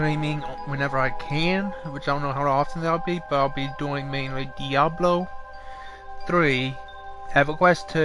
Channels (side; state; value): both; identical; correlation 1.00